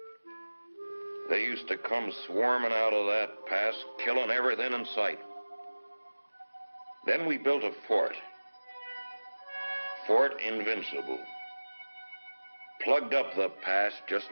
They used to come swarming out of that pass, killing everything in sight. Then we built a fort. Fort Invincible. Plugged up the pass just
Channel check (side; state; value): both; inverted; correlation -1.00